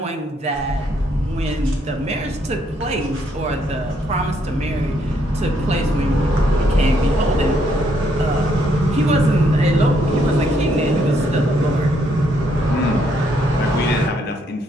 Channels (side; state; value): both; normal; correlation 0.72